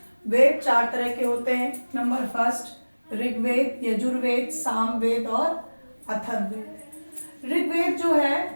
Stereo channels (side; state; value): both; inverted; correlation -1.00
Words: वेद 4 तरह के होते हैं। नंबर फर्स्ट, ऋग्वेद, यजुर्वेद, सामवेद और अथर्ववेद। ऋग्वेद जो है